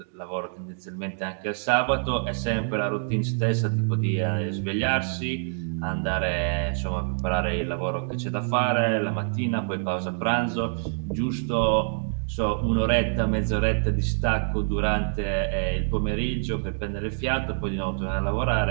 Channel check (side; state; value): left; silent; digital silence